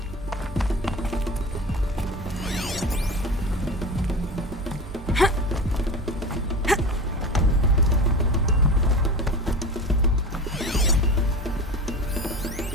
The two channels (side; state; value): both; normal; correlation 0.30